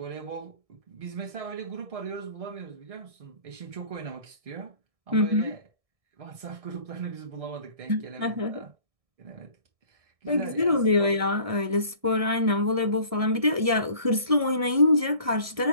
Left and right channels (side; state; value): left; late; 1.6 ms